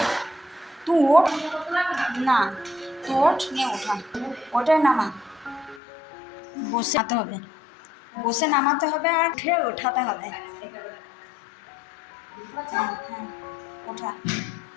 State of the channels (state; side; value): drops out; right; at 5.8 s